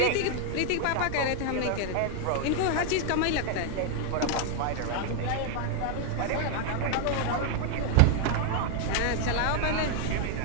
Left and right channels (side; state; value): both; different; correlation 0.00